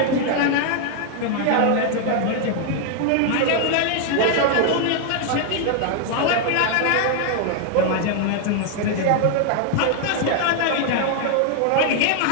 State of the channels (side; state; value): both; different; correlation 0.00